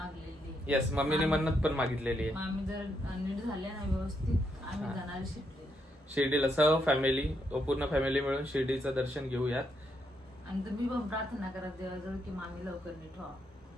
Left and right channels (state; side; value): normal; both; correlation 0.78